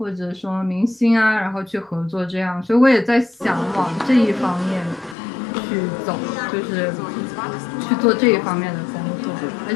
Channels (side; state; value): right; drops out; at 5.2 s